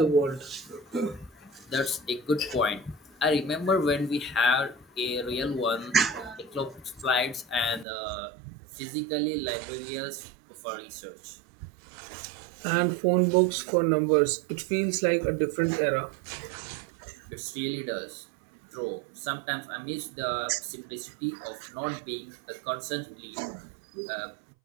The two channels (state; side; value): drops out; left; at 7.9 s